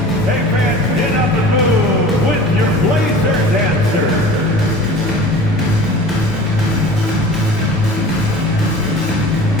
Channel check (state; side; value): normal; both; correlation 0.41